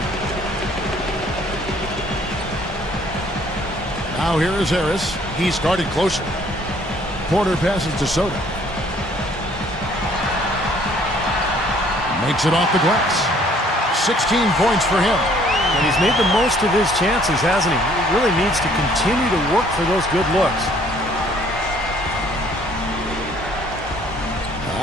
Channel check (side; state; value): both; normal; correlation 0.60